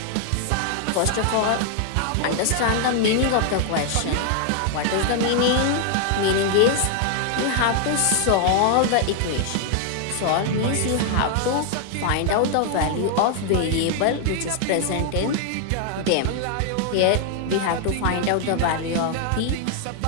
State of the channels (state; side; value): different; both; correlation 0.00